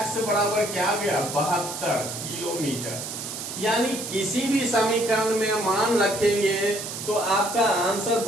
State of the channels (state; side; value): noise; right; hiss, 7 dB below the sound